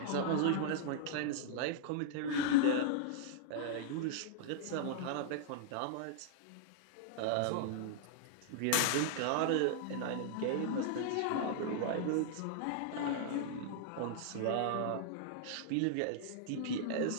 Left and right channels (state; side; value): different; both; correlation -0.01